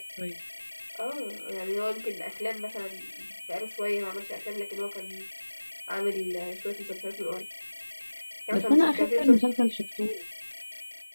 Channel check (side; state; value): both; inverted; correlation -1.00